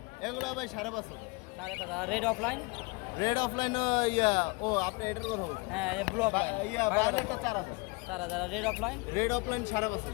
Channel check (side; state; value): right; quieter; 27.8 dB